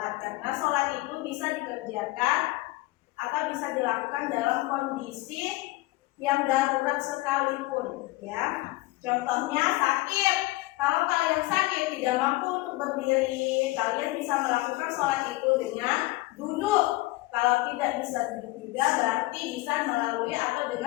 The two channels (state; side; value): quieter; right; 20.0 dB